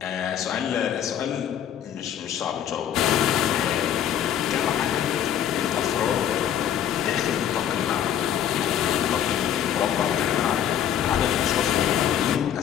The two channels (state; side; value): quieter; right; 9.9 dB